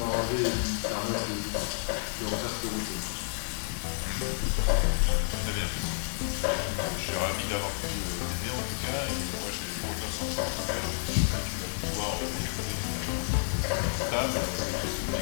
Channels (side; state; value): right; silent; 58 dB below the other